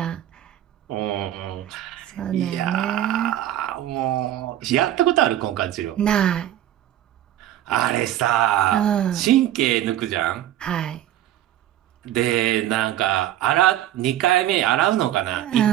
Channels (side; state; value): left; quieter; 12.5 dB